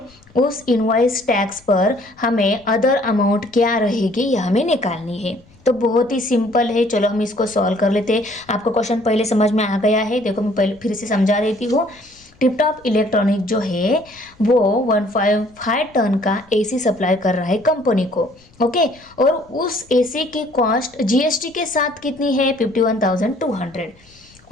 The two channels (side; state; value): left; noise; rumble, 29 dB below the sound